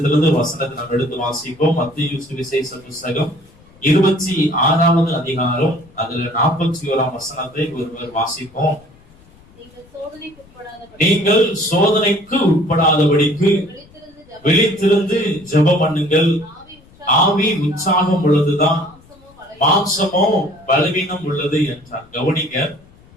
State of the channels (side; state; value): left; noise; rumble, 27 dB below the sound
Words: வசனத்தை நாம் எடுத்து வாசிப்போம். மத்தேயு சுவிசேஷ புஸ்தகம் 26வது அதிகாரம் அதுல 41ஆம் வசனத்தை ஒருவர் வாசிப்போம். நீங்கள் சோதனைக்கு உட்படாதபடிக்கு விழித்திருந்து ஜெபம் பண்ணுங்கள். ஆவி உற்சாகம் உள்ளதுதான், மாம்சமோ பலவீனம் உள்ளது என்றார். கவனிங்க,